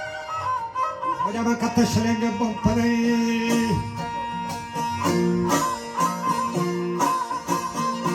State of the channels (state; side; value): identical; both; correlation 1.00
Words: وجا من کت شلنگ بم پره